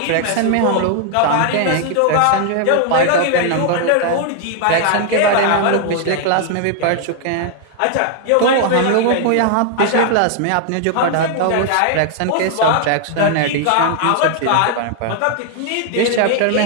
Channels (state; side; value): different; both; correlation 0.00